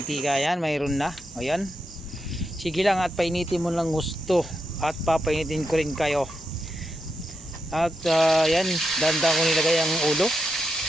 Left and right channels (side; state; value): both; normal; correlation 0.85